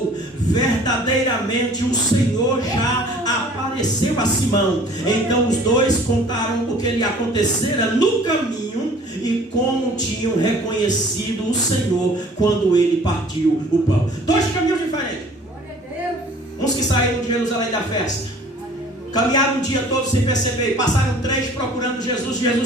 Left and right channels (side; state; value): both; normal; correlation 0.51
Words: verdadeiramente o Senhor já apareceu a Simão. Então os dois contaram o que lhe acontecera no caminho e como tinham reconhecido o Senhor quando ele partiu o pão. Dois caminhos diferentes. Uns que saíram de Jerusalém da festa, caminharam o dia todo sem perceber, passaram 3 procurando Jesus, Jesus